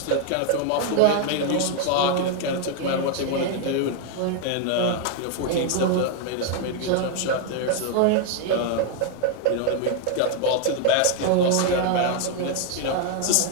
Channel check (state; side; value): different; both; correlation 0.00